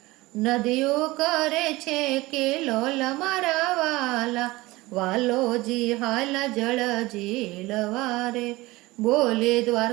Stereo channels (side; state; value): left; quieter; 20.4 dB